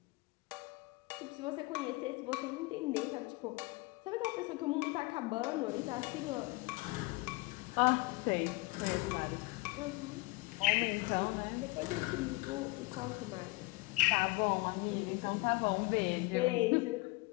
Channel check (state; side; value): quieter; right; 24.3 dB